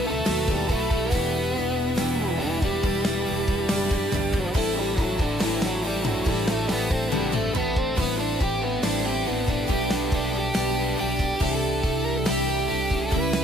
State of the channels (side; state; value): both; normal; correlation 0.68